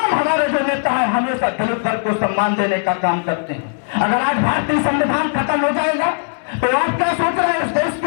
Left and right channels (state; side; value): silent; right; 63 dB below the other